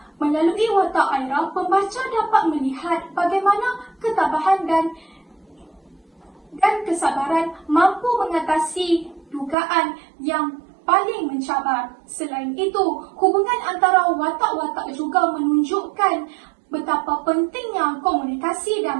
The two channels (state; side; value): drops out; left; at 9.6 s